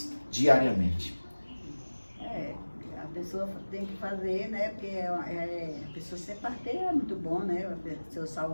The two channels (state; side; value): inverted; both; correlation -1.00